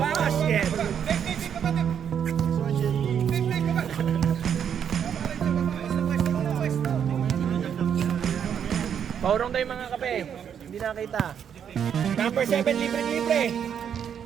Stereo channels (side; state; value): left; quieter; 8.3 dB